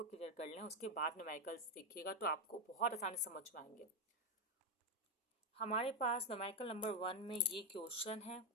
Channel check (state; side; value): normal; both; correlation 0.05